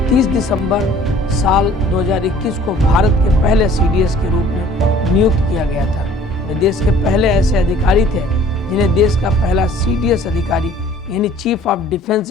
30 दिसंबर साल 2021 को भारत के पहले सीडीएस के रूप में नियुक्त किया गया था। वे देश के पहले ऐसे अधिकारी थे जिन्हें देश का पहला सीडीएस अधिकारी यानी चीफ ऑफ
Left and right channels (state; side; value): normal; both; correlation 0.53